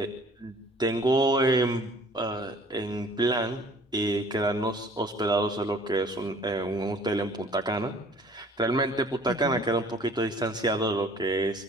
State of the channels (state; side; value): normal; both; correlation 0.53